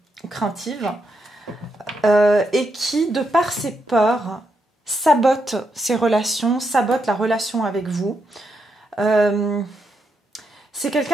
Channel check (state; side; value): normal; both; correlation 0.81